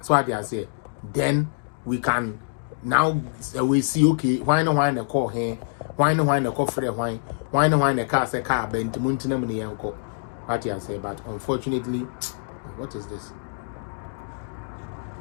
so what you say then we can now we see okay why no call here why no call free why no car say car bent muntina me yanko what you say but unfortunately what is this.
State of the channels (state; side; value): silent; right; digital silence